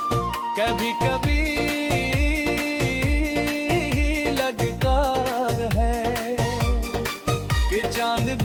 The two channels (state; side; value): identical; both; correlation 1.00